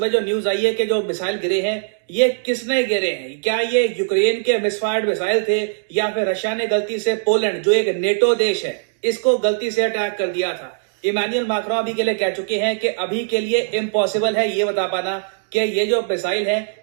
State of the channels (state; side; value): silent; left; digital silence